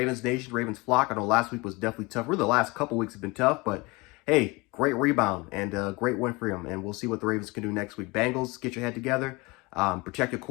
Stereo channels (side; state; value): right; quieter; 25.0 dB